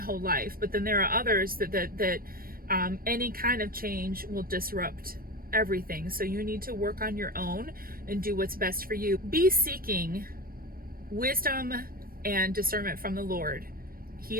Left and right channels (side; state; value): left; late; 0.42 ms